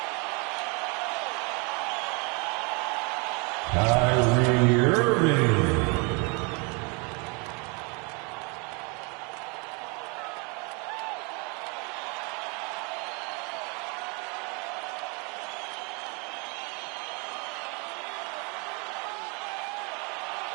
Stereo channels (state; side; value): quieter; left; 32.0 dB